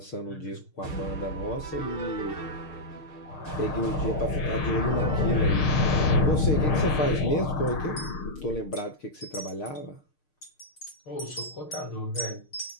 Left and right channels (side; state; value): right; late; 6.6 ms